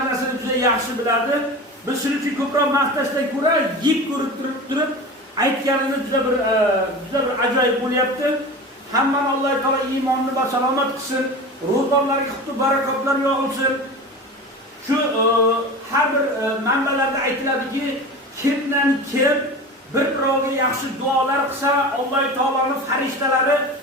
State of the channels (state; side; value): normal; both; correlation 0.31